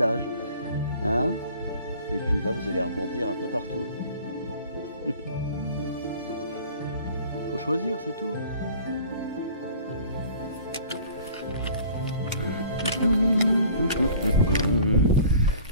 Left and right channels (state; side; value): inverted; both; correlation -0.48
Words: Hein, et puis là, vous allez rebondir un peu partout. Faut choisir, c'est tout.